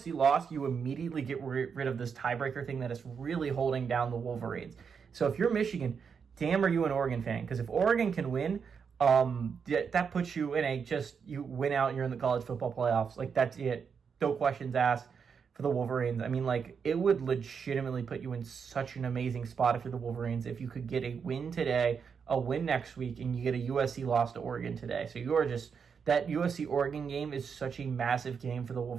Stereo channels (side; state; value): left; quieter; 6.4 dB